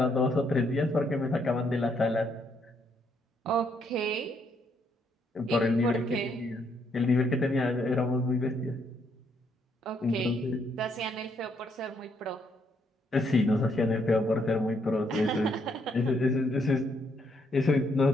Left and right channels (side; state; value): both; normal; correlation 0.73